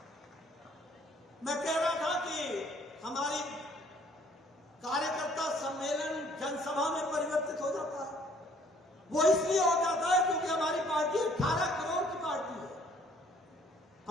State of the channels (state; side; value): normal; both; correlation 0.60